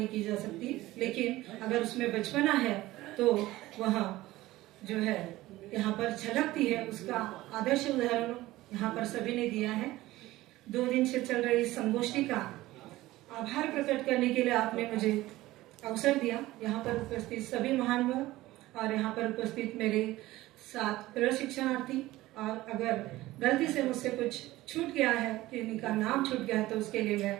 की जा सकती, लेकिन अगर उसमें बचपना है तो वह जो है यहाँ पर झलकती है, उसका आदर्श उदाहरण यहाँ पर सभी ने दिया है। 2 दिन से चल रही इस संगोष्ठी का आभार प्रकट करने के लिए आपने मुझे अवसर दिया। यहाँ पर उपस्थित सभी महानुभाव और यहाँ पर उपस्थित मेरे साथ प्रशिक्षणार्थी, और अगर गलती से मुझसे कुछ छूट गया है, किसी का नाम छूट गया है, तो उसके लिए मैं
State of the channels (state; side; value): quieter; left; 17.3 dB